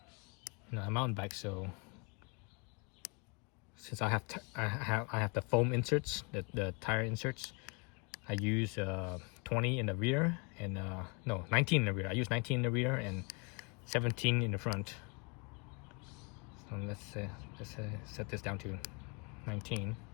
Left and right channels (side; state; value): right; quieter; 32.7 dB